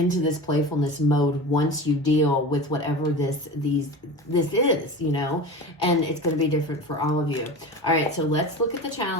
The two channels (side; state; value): both; normal; correlation 0.31